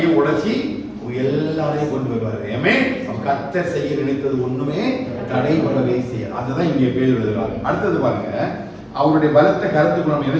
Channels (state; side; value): identical; both; correlation 1.00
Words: உடைச்சி எல்லாரையும் கொண்டு வருவாரு. கர்த்தர் செய்ய நினைத்தது ஒண்ணுமே தடைபடவே செய்ய. அதுதான் இங்கே பேர் எழுதுறாரு. அடுத்தது பாருங்க, அவருடைய பலத்த கருத்துக்கு நம்ம